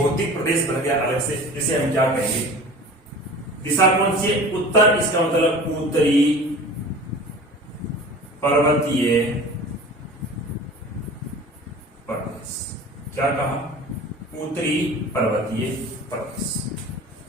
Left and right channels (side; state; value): both; normal; correlation 0.40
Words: प्रदेश बन गया अलग से, जिसे हम क्या कहेंगे, दिशा कौन सी है उत्तर, इसका मतलब उत्तरी पर्वतीय प्रदेश। क्या कहा, उत्तरी पर्वतीय प्रदेश